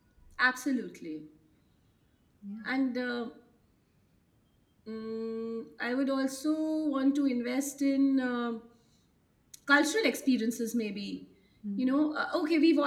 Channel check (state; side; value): identical; both; correlation 1.00